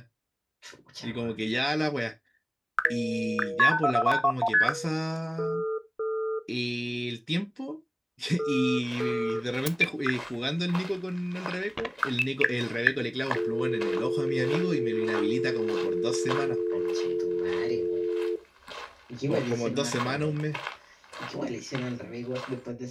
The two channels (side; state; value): both; identical; correlation 1.00